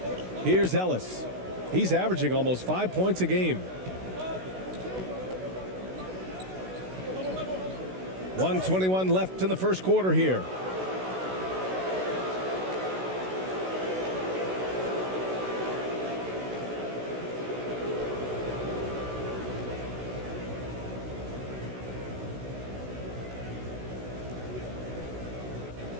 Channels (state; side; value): late; left; 16 ms